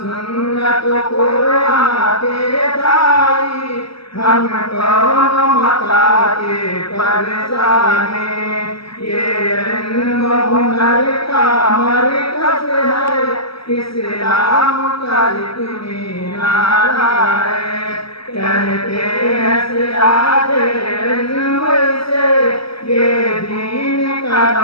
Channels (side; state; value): right; late; 0.75 ms